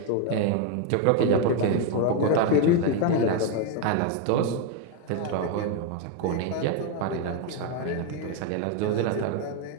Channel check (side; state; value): both; different; correlation 0.01